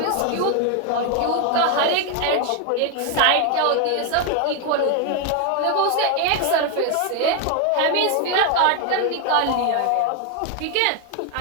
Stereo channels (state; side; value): different; both; correlation 0.01